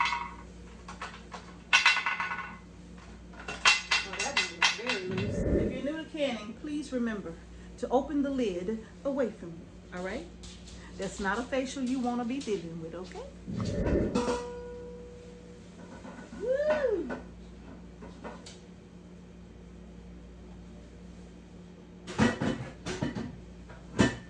Oh, that one is very loose. If you're new to canning, please remember to open the lid away from you, all right? That's not a facial you wanna be dealing with, okay? Woo!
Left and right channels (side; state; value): both; identical; correlation 1.00